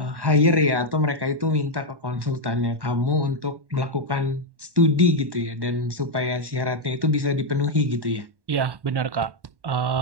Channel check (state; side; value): late; left; 1.1 ms